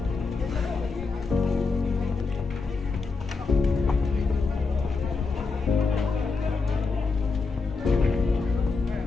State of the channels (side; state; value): right; quieter; 4.3 dB